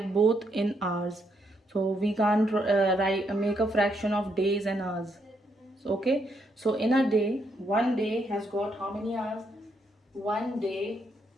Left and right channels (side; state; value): both; normal; correlation 0.76